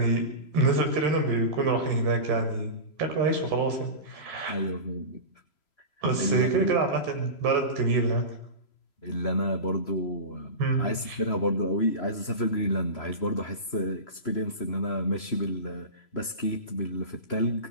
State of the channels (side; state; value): right; late; 3.0 ms